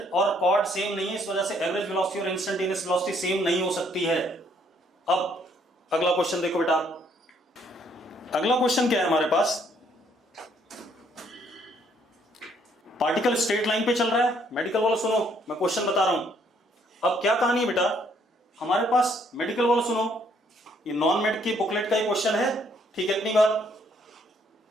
और कॉर्ड सेम नहीं है, इस वजह से एवरेज वेलोसिटी और इंस्टेंटेनियस वेलोसिटी सेम नहीं हो सकती है। अब अगला क्वेश्चन देखो बेटा, अगला क्वेश्चन क्या है हमारे पास? पार्टिकल स्ट्रेट लाइन पे चल रहा है। मेडिकल वालों सुनो, मैं क्वेश्चन बता रहा हूं। अब क्या कहानी है बेटा, हमारे पास मेडिकल वालों सुनो, ये नॉन मेड की बुकलेट का ही क्वेश्चन है, ठीक है, इतनी बात।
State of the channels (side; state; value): both; normal; correlation 0.67